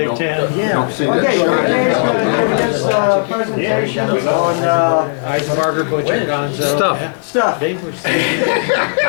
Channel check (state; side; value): silent; right; 63 dB below the other